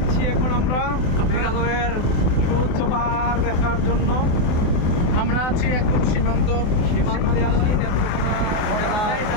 এখন আমরা মেঘালয়ের সুউচ্চ পাহাড় দেখার জন্য। আমরা আছি একদম সীমান্তে আছি নেত্রকোনা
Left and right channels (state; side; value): late; right; 24 ms